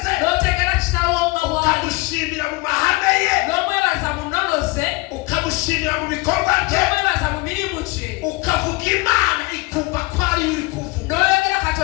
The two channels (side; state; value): right; quieter; 24.4 dB